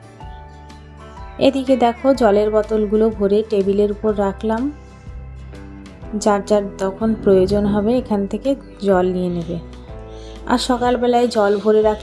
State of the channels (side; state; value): both; identical; correlation 1.00